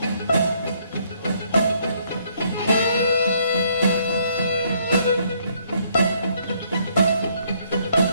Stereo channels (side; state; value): both; inverted; correlation -0.69